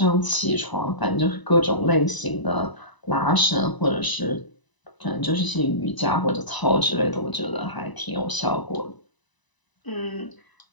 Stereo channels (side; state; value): right; late; 1.0 ms